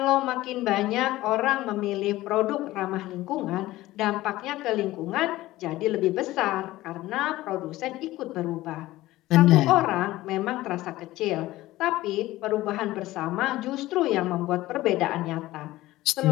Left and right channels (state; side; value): quieter; right; 17.0 dB